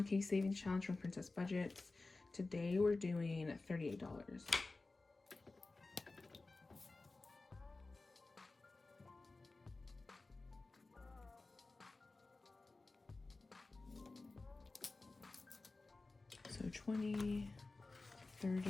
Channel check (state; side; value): quieter; right; 3.4 dB